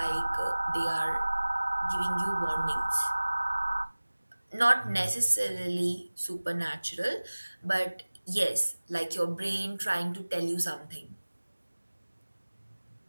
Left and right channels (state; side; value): inverted; both; correlation -1.00